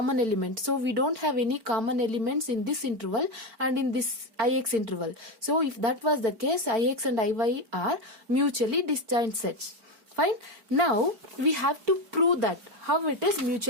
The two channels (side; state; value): left; late; 4.5 ms